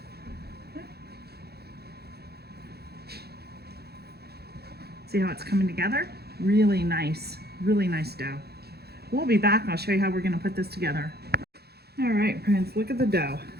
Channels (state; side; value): late; left; 0.46 ms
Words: See how it's coming together? Really nice dough. We'll be back and I'll show you how we're going to put this together. All right, friends, look at the dough.